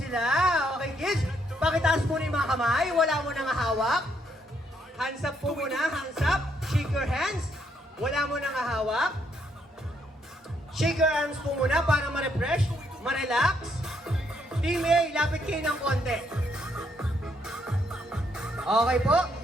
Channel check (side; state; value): both; normal; correlation 0.73